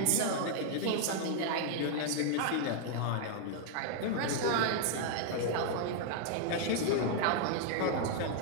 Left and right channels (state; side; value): different; both; correlation 0.00